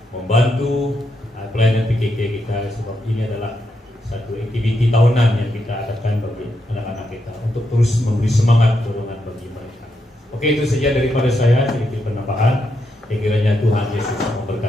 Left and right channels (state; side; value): normal; both; correlation 0.82